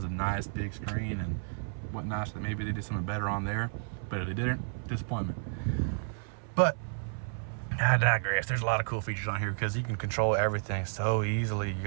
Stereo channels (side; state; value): left; silent; 57 dB below the other